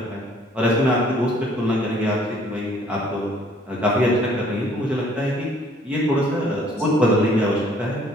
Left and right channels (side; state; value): both; normal; correlation 0.59